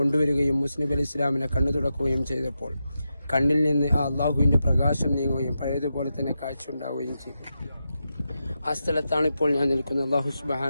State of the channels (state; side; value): inverted; both; correlation -0.88